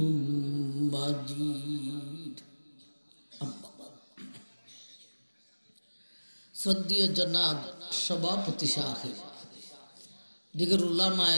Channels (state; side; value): inverted; both; correlation -1.00